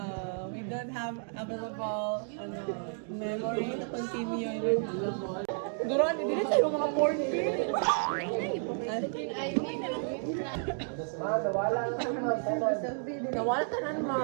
We don't have available memory to continue. Duran, hindi na tayo mga 4K. Nawala ka na,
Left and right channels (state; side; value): silent; left; 57 dB below the other